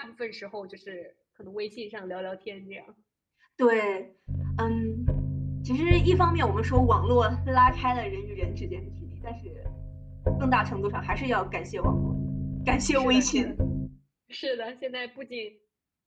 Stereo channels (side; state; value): both; identical; correlation 1.00